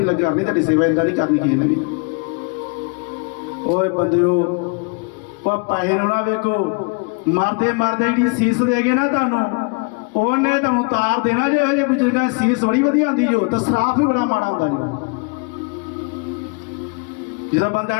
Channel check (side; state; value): right; quieter; 34.1 dB